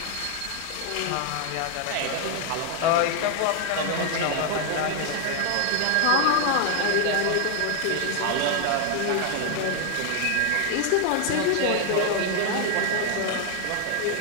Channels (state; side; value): different; both; correlation 0.00